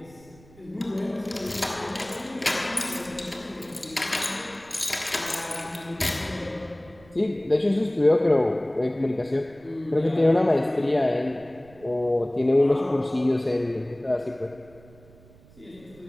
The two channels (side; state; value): right; noise; rumble, 25 dB below the sound